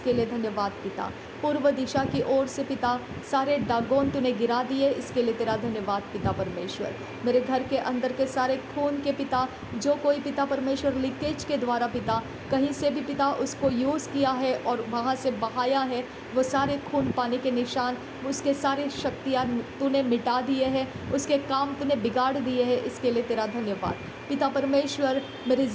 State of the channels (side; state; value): both; identical; correlation 1.00